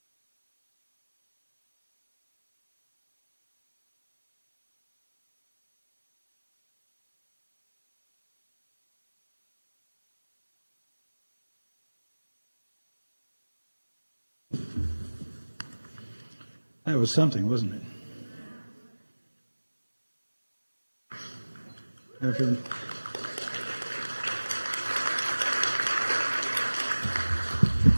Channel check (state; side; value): inverted; both; correlation -1.00